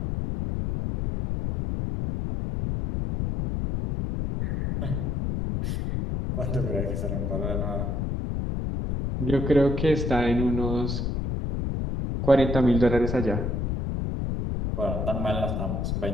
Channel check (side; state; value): left; noise; rumble, 1 dB below the sound